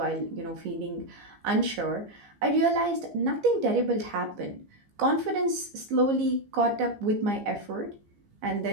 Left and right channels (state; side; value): late; left; 15 ms